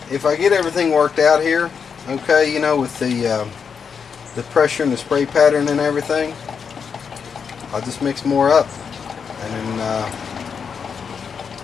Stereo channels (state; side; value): quieter; right; 6.4 dB